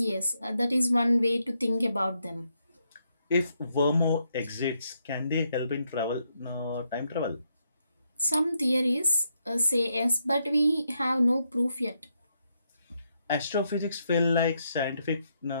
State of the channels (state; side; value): inverted; both; correlation -0.79